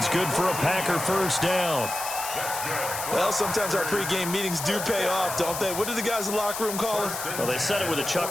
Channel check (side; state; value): left; noise; hiss, 6 dB below the sound